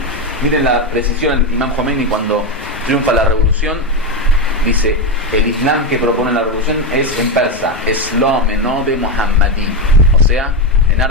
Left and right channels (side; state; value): both; normal; correlation 0.10